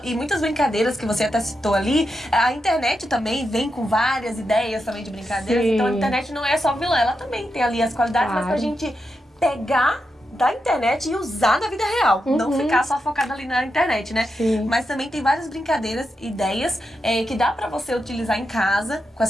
e muitas brincadeiras que você até citou ali, a internet também vem com várias ideias também de brincadeiras. Sim. Então, a internet não é só vilã, ela também tem ali as qualidades, mas pra gente pegar da internet e usar na vida real. Não ficar só focada ali na internet, né? Sim. Mas também tem várias brincadeiras, ideias que dá pra você utilizar em casa com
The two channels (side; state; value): both; normal; correlation 0.86